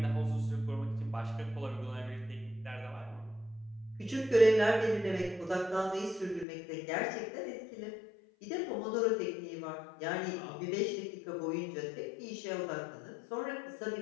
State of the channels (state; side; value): drops out; right; at 6.5 s